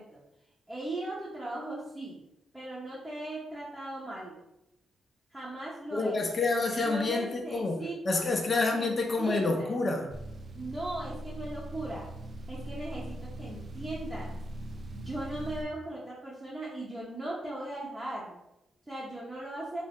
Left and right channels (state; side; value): normal; both; correlation 0.82